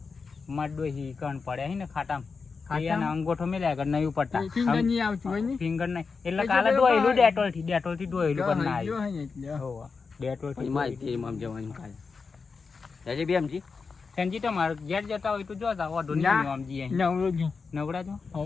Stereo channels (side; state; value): right; quieter; 4.9 dB